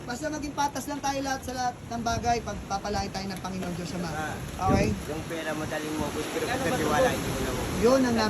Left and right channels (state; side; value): identical; both; correlation 1.00